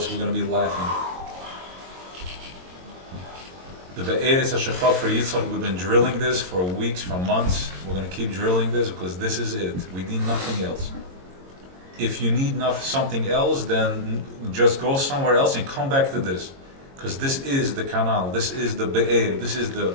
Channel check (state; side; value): late; left; 22 ms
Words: we're going to be laughing. The Be'eretz HaShechaf for Yitzchak, we've been drilling this for weeks, for months. We're going to keep drilling this because this is it. We need nothing else. If you need something else, then just go somewhere else and come back to this. Because this is the canal, this is the Be'er, this is the